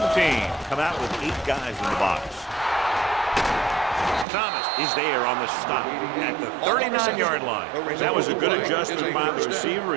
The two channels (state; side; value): drops out; left; at 4.2 s